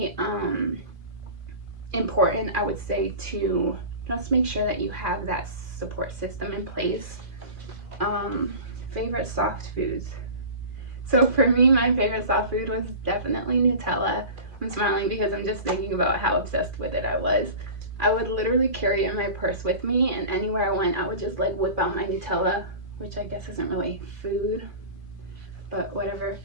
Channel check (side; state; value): left; late; 2.5 ms